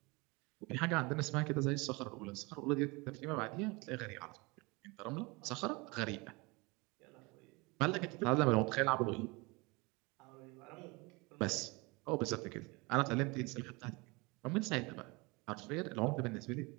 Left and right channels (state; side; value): quieter; left; 26.2 dB